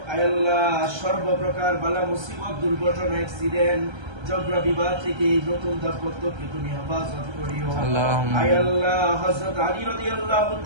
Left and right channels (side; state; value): left; late; 1.3 ms